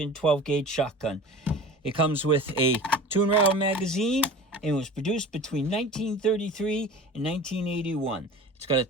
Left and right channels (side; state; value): both; normal; correlation 0.38